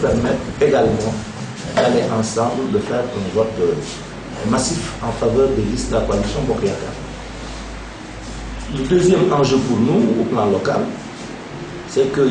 également d'aller ensemble, de faire un vote massif en faveur des listes de la coalition Bokk Yakaar. Le deuxième enjeu pour nous, au plan local, c'est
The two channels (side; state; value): both; identical; correlation 1.00